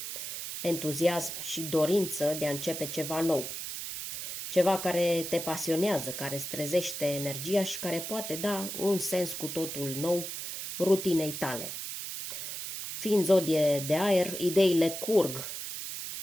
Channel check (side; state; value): right; noise; hiss, 6 dB below the sound